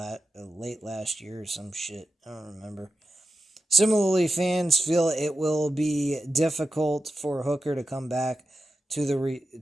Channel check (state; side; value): normal; both; correlation 0.91